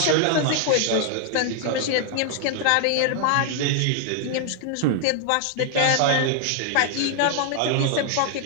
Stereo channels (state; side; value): different; both; correlation 0.00